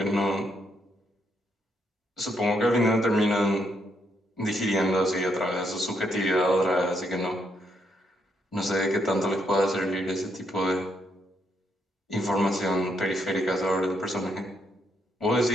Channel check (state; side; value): normal; both; correlation 0.76